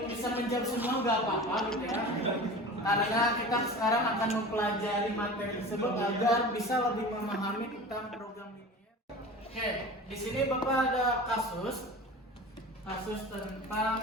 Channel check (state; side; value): normal; both; correlation 0.35